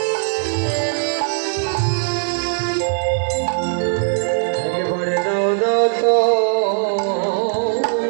একবারে দাও দাও তো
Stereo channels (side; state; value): left; silent; digital silence